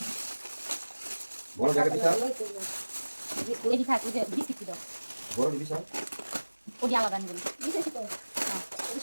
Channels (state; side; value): inverted; both; correlation -1.00